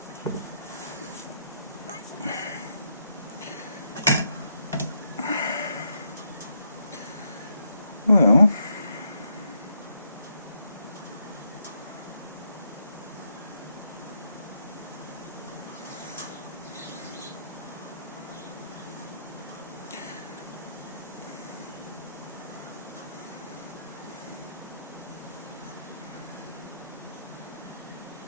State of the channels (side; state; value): both; inverted; correlation -0.77